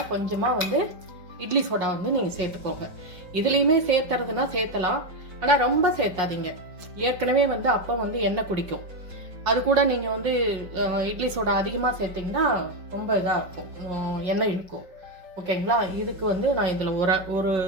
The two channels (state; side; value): late; left; 5.2 ms